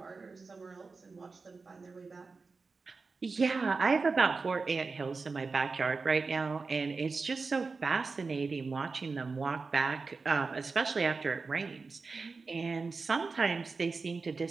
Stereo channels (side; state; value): left; quieter; 4.3 dB